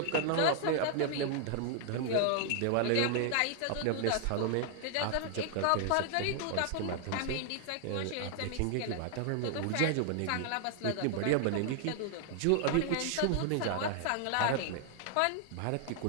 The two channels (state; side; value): different; both; correlation 0.00